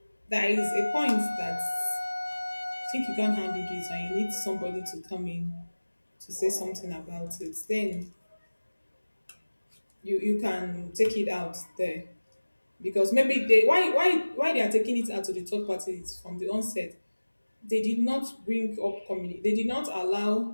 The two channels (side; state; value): both; inverted; correlation -1.00